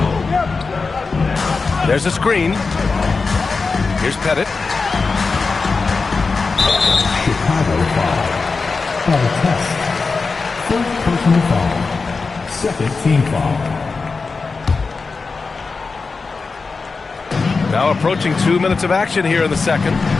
There's a screen. Here's Pettit. Chicago foul. On test. First personal foul. Second team foul. Now approaching 2 minutes of action here in the second.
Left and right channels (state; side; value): quieter; right; 4.3 dB